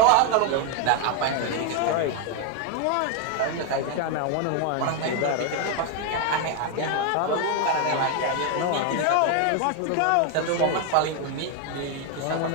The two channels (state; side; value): different; both; correlation 0.01